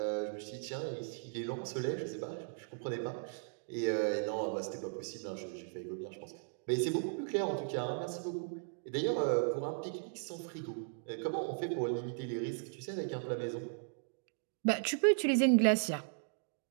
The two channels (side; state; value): left; silent; digital silence